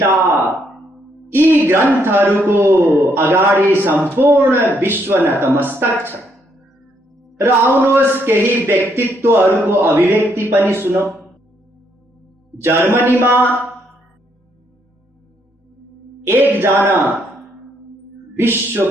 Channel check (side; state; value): both; normal; correlation 0.73